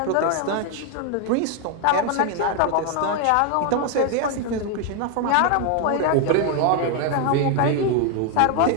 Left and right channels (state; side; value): different; both; correlation 0.01